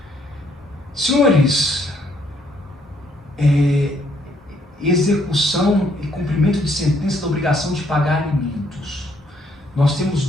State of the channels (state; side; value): normal; both; correlation 0.68